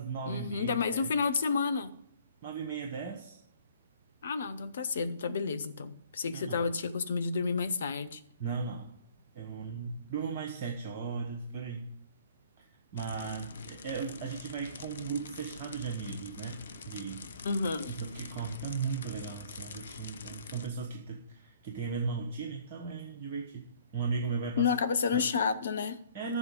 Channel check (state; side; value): inverted; both; correlation -0.56